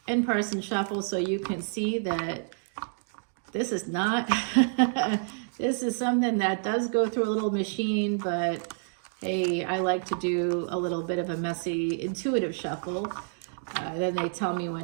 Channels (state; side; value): silent; left; digital silence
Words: in-person shuffle so you can see that this is not, this is something that does go through a little machine, but hey, I like to do a little bit of a messy, intuitive shuffle. Then they tell me